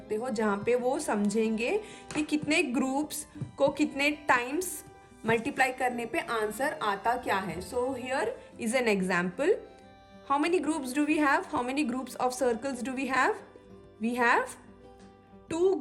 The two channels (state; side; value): identical; both; correlation 1.00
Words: हो, जहाँ पे वो समझेंगे कि कितने ग्रुप्स को कितने टाइम्स मल्टीप्लाई करने पे आंसर आता क्या है। So here is an example. How many groups do we have? How many groups of circles do we have? We have 2